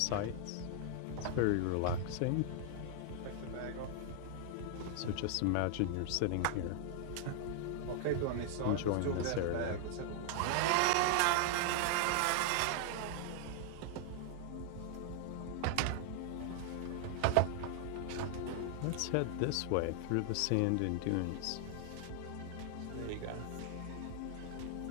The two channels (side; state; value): both; different; correlation 0.00